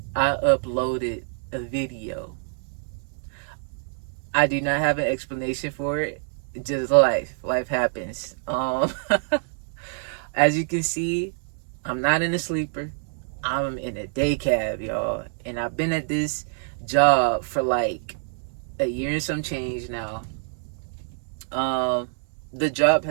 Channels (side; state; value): left; silent; digital silence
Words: I uploaded a video. I do not have an explanation for it. Just life happens. As you can see, I'm not in a sleeper. I'm in a day cab, y'all, and I've been at this job for like a year and some change now. Um, the job